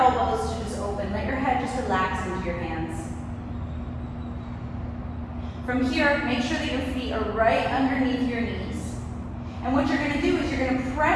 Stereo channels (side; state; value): both; identical; correlation 1.00